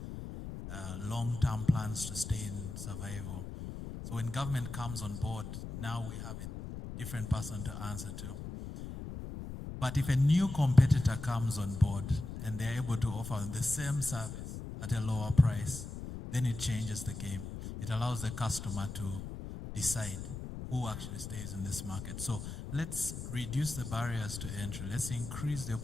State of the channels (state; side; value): noise; left; rumble, 8 dB below the sound